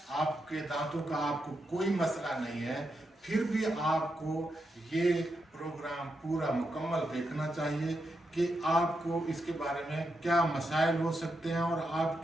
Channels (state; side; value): normal; both; correlation 0.85